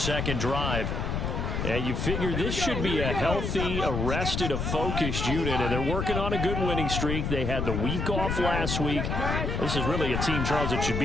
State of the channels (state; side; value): noise; left; rumble, 1 dB below the sound